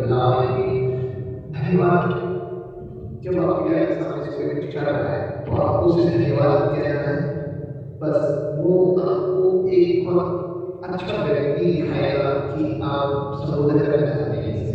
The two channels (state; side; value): identical; both; correlation 1.00